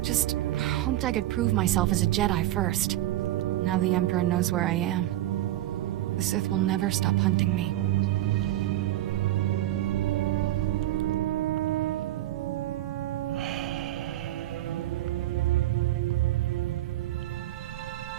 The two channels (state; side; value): quieter; left; 14.5 dB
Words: Just hoped I could prove myself as a Jedi first. Now the Emperor knows where I am. The Sith will never stop hunting me.